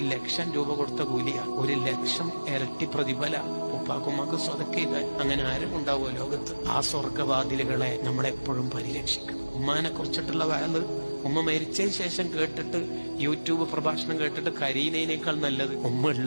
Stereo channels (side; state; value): both; inverted; correlation -1.00